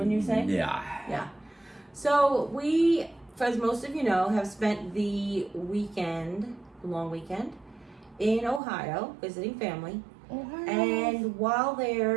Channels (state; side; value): drops out; left; at 8.6 s